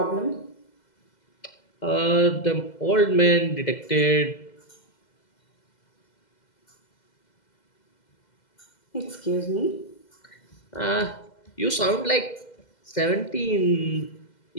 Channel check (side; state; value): right; late; 2.0 ms